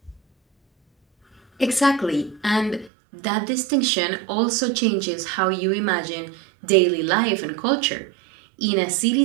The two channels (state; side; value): drops out; left; at 2.9 s